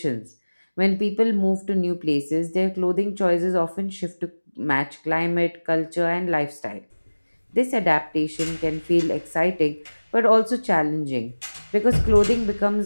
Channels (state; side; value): inverted; both; correlation -1.00